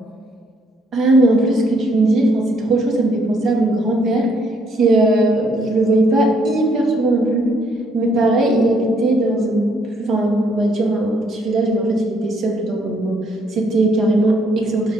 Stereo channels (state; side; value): normal; both; correlation 0.69